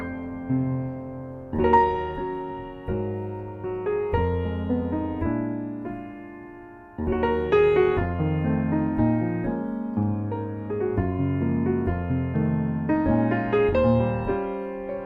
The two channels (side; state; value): both; identical; correlation 1.00